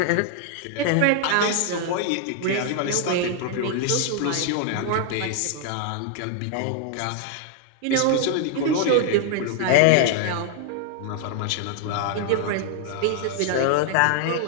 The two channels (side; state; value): both; different; correlation 0.00